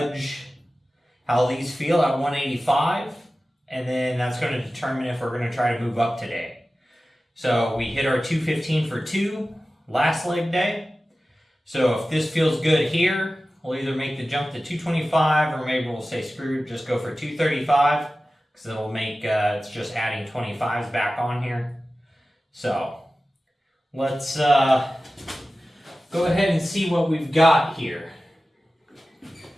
how these feel at 185. And then that's going to determine if we're going to try to move up today. So we hit our 215 for 2 last leg day. So if this feels good here, we'll either make the jump to 225 or maybe we'll say screw it, just go for 235 because it'll make, it's just adding 25s back on here. So let's go ahead and see what we've got here.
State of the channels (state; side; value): normal; both; correlation 0.95